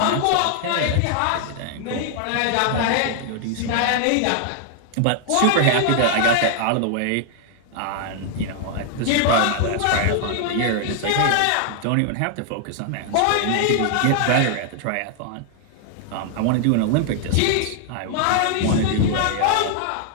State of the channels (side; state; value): both; different; correlation 0.00